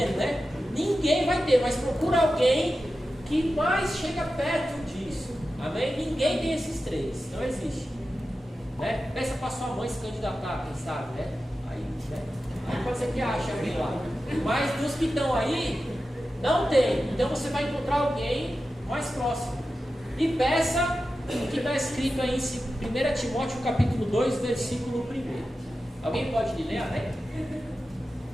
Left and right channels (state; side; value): normal; both; correlation 0.92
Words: né? Ninguém vai ter, mas procura alguém que mais chega perto disso. Amém? Ninguém tem esses três. Não existe. Né? Peça para sua mãe se candidatar, quem sabe, né? Aí pode ser que ache alguém lá. Mas dos que estão aí, não tem. Então você vai encontrar alguém mais próximo. E peça o que está escrito aí em 1 Timóteo capítulo 2, versículo 1. Alguém pode ler, né?